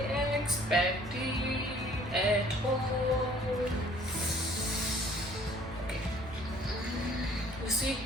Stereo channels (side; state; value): both; normal; correlation 0.56